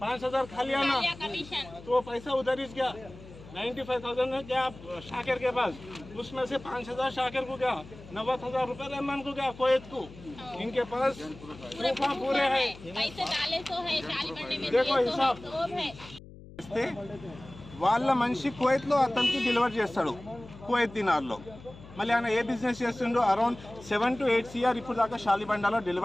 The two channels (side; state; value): left; noise; hum, 18 dB below the sound